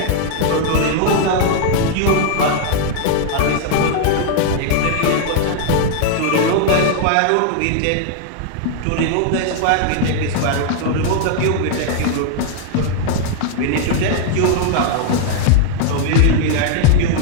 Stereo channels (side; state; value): both; different; correlation 0.00